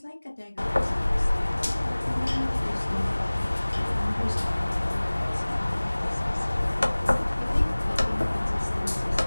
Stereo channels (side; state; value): both; inverted; correlation -1.00